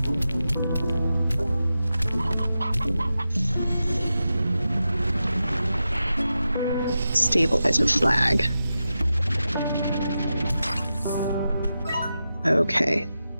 Stabilizer flag. Okay.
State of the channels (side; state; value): both; inverted; correlation -0.90